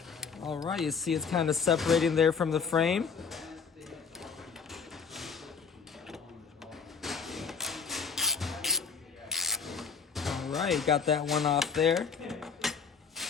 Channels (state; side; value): quieter; right; 5.9 dB